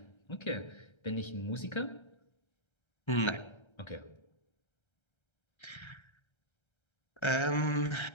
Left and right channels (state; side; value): late; right; 1.3 ms